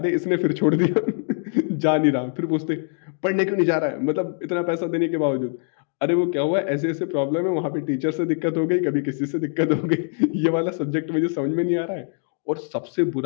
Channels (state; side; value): silent; right; 56 dB below the other